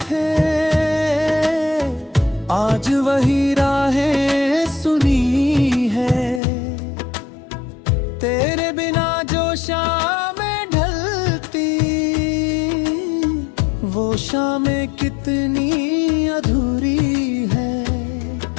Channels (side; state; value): right; drops out; at 6.4 s